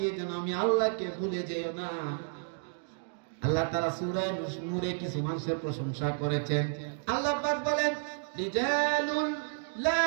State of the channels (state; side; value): silent; left; digital silence